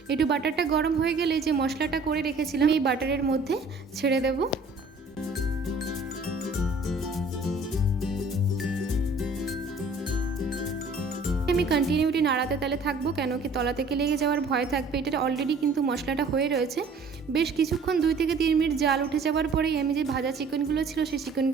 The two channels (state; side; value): quieter; left; 3.6 dB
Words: একটু বাটারটা গরম হয়ে গেলে যে মশলাটা করে রেখেছিলাম এই বাটারের মধ্যে ছেড়ে দেবো। আমি কন্টিনিউটি নাড়াতে তালে থাকবো, কেন কি তলা থেকে লেগে যাওয়ার ভয় থাকবে। এটা অলরেডি কিন্তু মশলাটা হয়ে রয়েছে। বেশ কিছুক্ষণ 2 থেকে 3 মিনিট জাল উঠে যাওয়ার পরেই আমি যে ভাজা চিকেনগুলো ছিল সেই